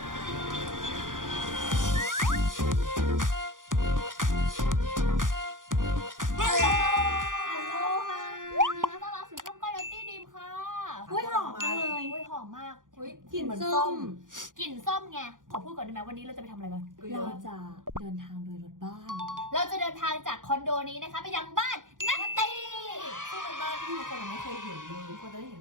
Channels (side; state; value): left; late; 0.89 ms